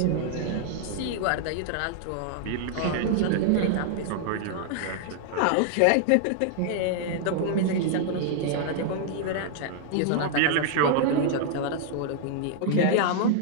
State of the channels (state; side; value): different; both; correlation 0.00